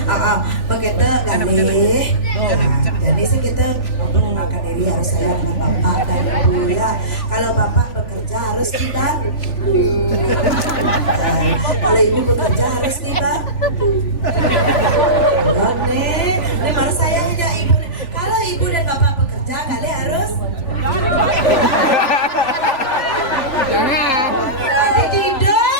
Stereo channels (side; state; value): right; late; 3.4 ms